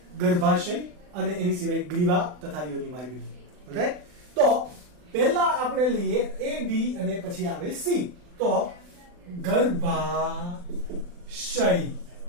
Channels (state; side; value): late; left; 40 ms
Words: ગર્ભાશય અને એની સિવાય ગ્રીવા તથા યોનિ માર્ગની. રાઈટ? તો પહેલા આપણે લઈએ A B અને પછી આવે C. તો ગર્ભાશય.